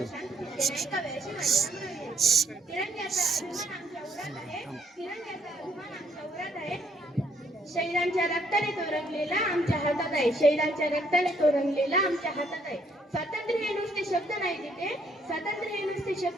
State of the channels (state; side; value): normal; both; correlation 0.68